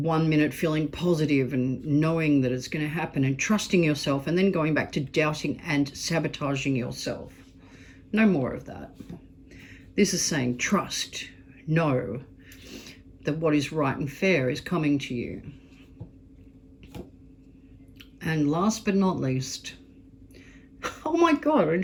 minute feeling positive and knowing that it's going to happen and trusting yourself, and then going back to doubting and sabotaging yourself. No more of that. This is saying trust, know that what is right and fair is coming to you. And last but not least, oh my God, I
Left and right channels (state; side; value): identical; both; correlation 1.00